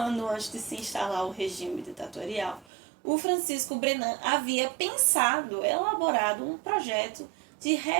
antes de se instalar o regime ditatorial, o Francisco Brenan havia pensado, elaborado um projeto de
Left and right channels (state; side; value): drops out; left; at 2.7 s